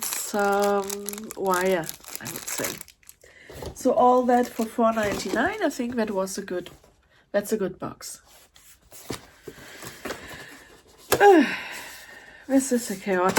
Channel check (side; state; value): both; identical; correlation 1.00